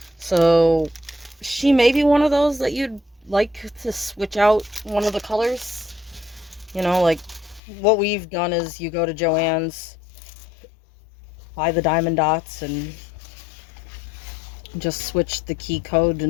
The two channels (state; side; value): drops out; right; at 7.6 s